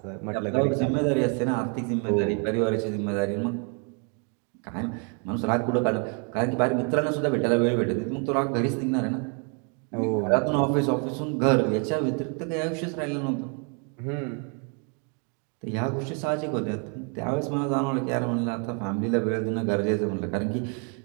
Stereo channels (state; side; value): quieter; left; 38.3 dB